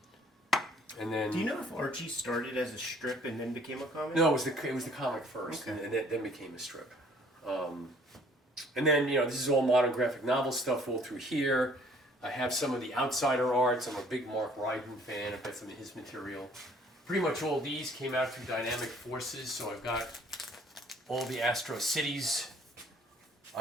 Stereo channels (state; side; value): normal; both; correlation 0.58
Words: And then... Do you know if Archie started as a strip and then became a comic? No, it was the comic first, Okay. and then became a strip. And then, this is all modern graphic novel stuff all through here. I have some of the Outsider arts. I'm a big Mark Ryden fan. I've got some of his material. Pretty much all these came out through Dynamic Forces, so I've got all the Astro Cities.